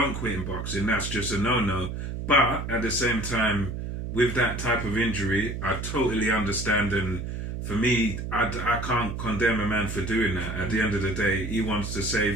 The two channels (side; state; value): right; noise; hum, 5 dB below the sound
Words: quit in boxing, that's just a no-no. But at the same time, with that type of injury, I totally understand, and for me, I can't condemn a man for doing that. At the end of the day, he wants to